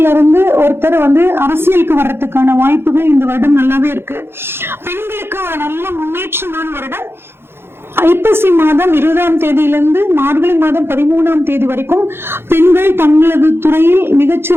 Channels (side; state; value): left; late; 0.11 ms